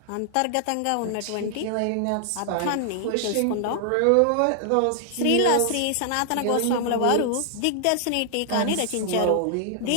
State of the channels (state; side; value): different; both; correlation 0.00